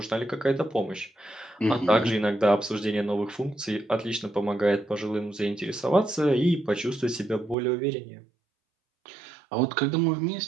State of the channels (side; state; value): left; drops out; at 7.6 s